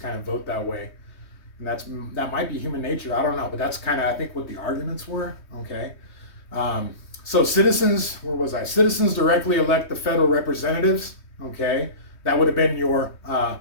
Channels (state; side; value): late; right; 3.2 ms